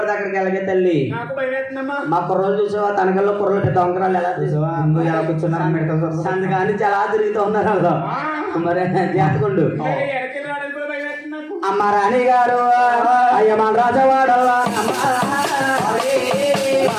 అక్కడికి వెళ్ళగే తల్లి. మా కుర్రలు చూసావా? తనకల్లో కుర్రలు పెద్ద వంకరాలు ఎలా చూసావా? ఎలా కూర్చున్నారు అందుకని చాలా తిరుగుతూ ఉన్నారు. మరి జాతకుండు అమ్మ రాణి గారు అయ్య మన రాజవాడల్లా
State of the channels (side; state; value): both; identical; correlation 1.00